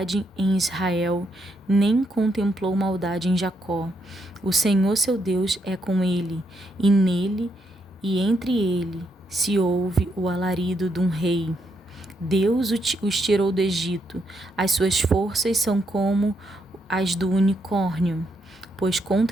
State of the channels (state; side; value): normal; both; correlation 0.78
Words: em Israel, nem contemplou maldade em Jacó. O Senhor seu Deus é com ele, e nele e entre ele se ouve o alarido de um rei. Deus os tirou do Egito, as suas forças são como as do unicórnio, pois